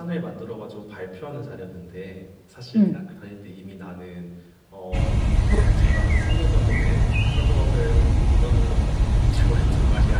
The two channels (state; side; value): identical; both; correlation 1.00